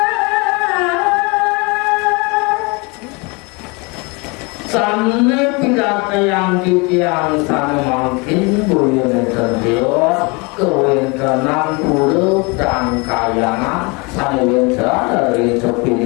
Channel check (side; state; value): right; quieter; 28.9 dB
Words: yang sana makin bulan terdios kewentenan puluh dan kayangan sana wentra dari